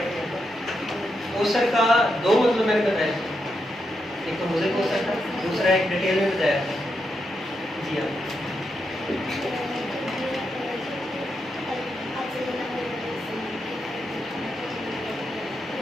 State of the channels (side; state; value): both; normal; correlation 0.84